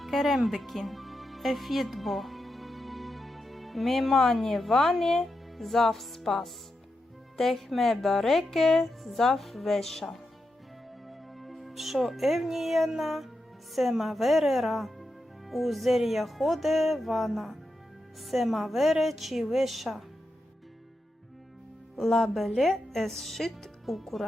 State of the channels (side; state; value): both; normal; correlation 0.87